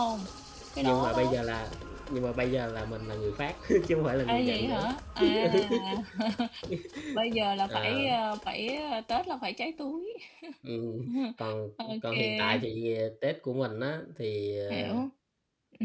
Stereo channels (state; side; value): identical; both; correlation 1.00